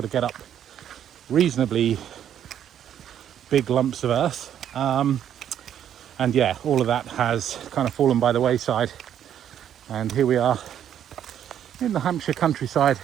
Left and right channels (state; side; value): quieter; left; 9.9 dB